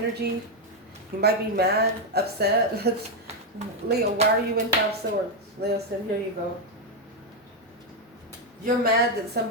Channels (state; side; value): normal; both; correlation 0.03